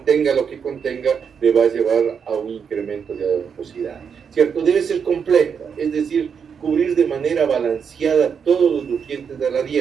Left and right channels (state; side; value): quieter; left; 6.8 dB